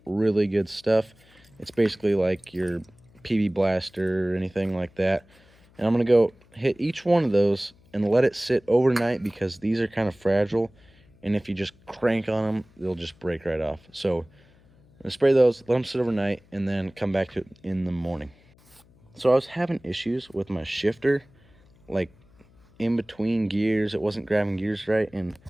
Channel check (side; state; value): left; noise; hum, 29 dB below the sound